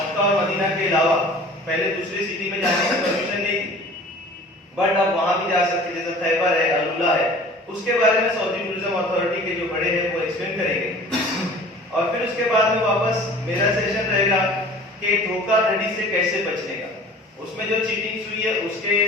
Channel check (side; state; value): both; normal; correlation 0.44